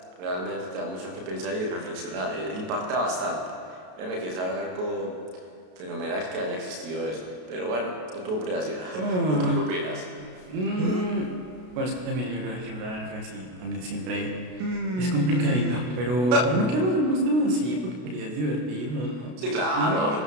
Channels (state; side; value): late; left; 33 ms